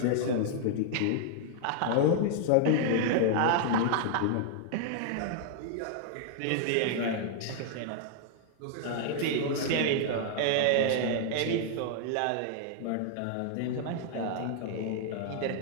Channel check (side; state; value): both; different; correlation -0.01